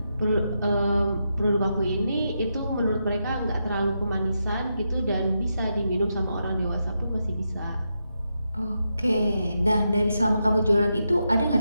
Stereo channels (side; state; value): both; inverted; correlation -0.85